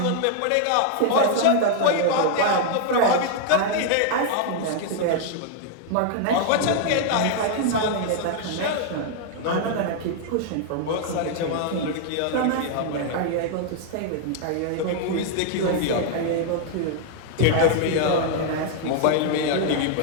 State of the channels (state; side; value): different; both; correlation -0.01